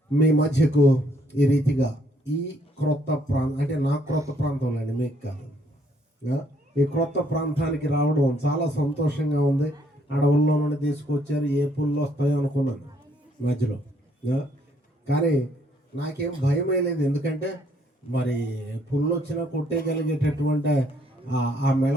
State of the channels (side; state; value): both; normal; correlation 0.68